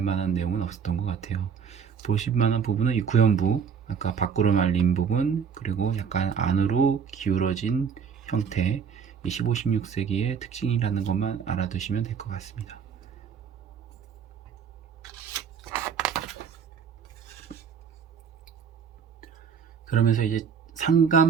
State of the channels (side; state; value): left; quieter; 6.9 dB